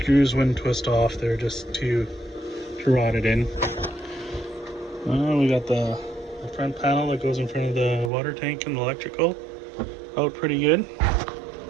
wouldn't twist off, they're just too rotted in. We got the front panel that goes in front of the water tank and the electrical out pretty good.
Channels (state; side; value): drops out; left; at 8.1 s